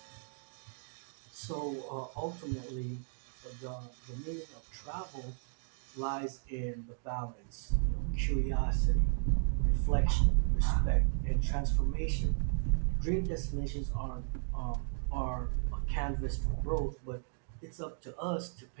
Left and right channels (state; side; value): silent; left; 55 dB below the other